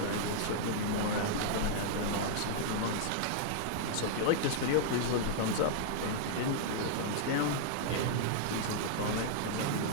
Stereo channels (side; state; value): both; different; correlation -0.01